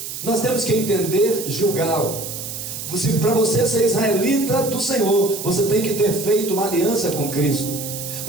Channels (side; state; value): right; noise; hiss, 8 dB below the sound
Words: nós temos que entender Gilgal. Para você ser israelita do Senhor, você tem que ter feito uma aliança com Cristo.